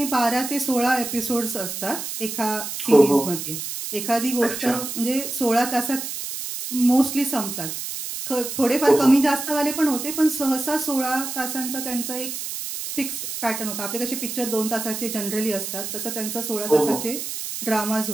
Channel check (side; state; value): right; noise; hiss, 6 dB below the sound